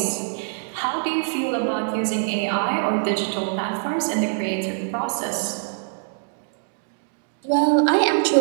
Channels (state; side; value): silent; left; digital silence